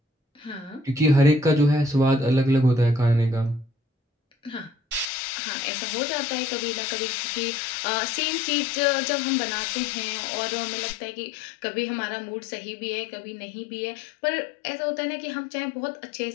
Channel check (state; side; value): drops out; right; at 5.1 s